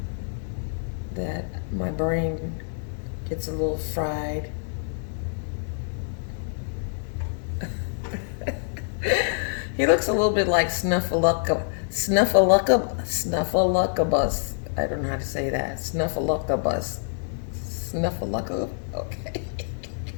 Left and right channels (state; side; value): silent; right; digital silence